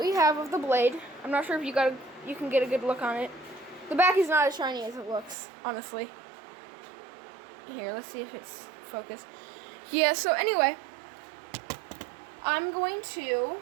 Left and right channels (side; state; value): left; drops out; at 5.4 s